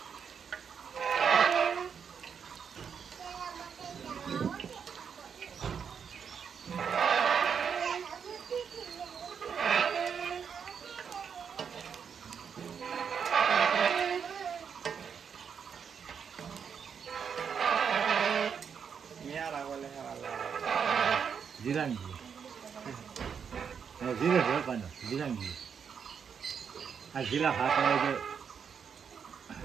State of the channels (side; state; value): left; quieter; 7.0 dB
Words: Jirangi. Oh, zira berapa nih? Jirangi. Ah, zira apa aja?